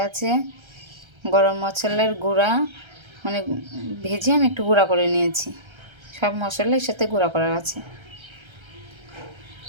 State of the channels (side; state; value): left; late; 1.3 ms